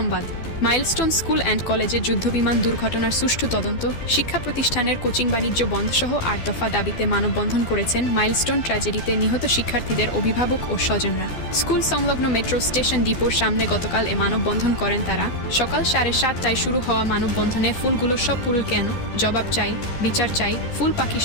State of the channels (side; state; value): right; late; 12 ms